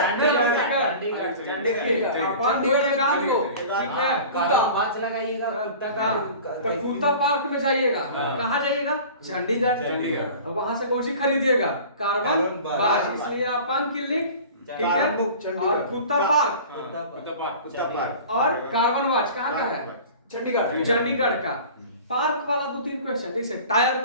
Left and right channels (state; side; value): inverted; both; correlation -0.41